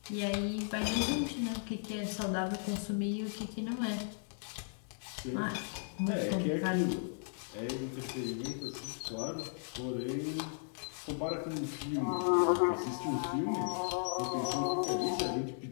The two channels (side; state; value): right; silent; digital silence